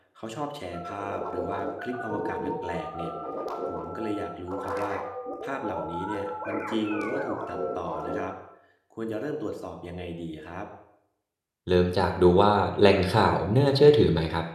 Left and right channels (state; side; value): identical; both; correlation 1.00